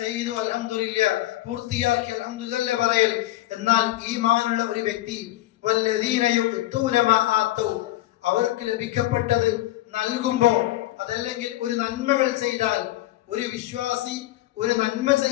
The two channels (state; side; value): quieter; right; 16.2 dB